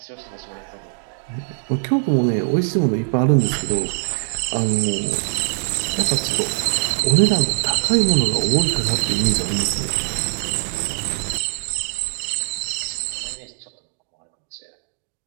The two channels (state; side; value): silent; left; digital silence